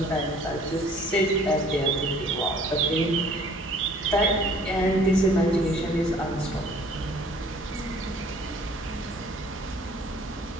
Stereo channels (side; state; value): both; normal; correlation 0.54